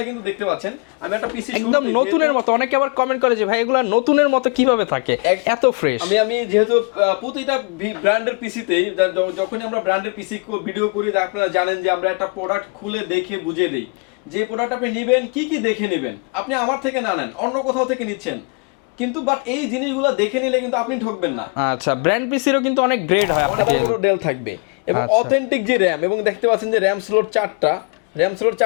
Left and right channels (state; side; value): quieter; right; 34.8 dB